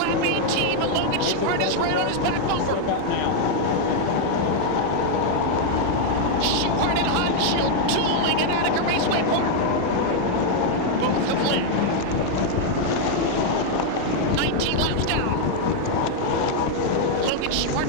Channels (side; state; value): both; different; correlation 0.00